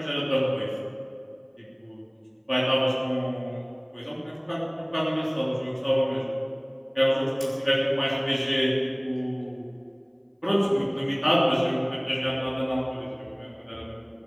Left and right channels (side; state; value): both; identical; correlation 1.00